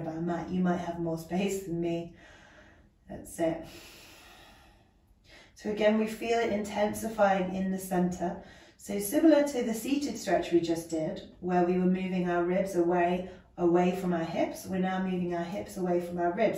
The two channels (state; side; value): identical; both; correlation 1.00